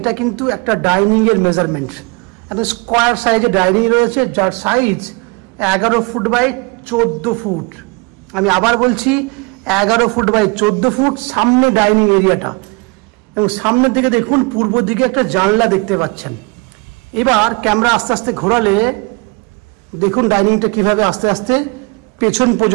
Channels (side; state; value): left; quieter; 29.2 dB